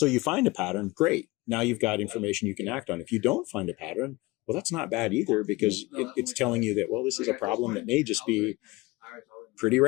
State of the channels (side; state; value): right; quieter; 22.0 dB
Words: find a pattern, great. Now you've got information you can act on. If you don't find a pattern, well, that's not bad either, because it's telling you that, well, this is a problem that may just be pretty